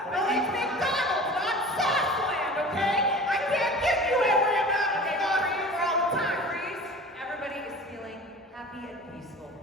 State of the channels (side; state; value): both; normal; correlation 0.39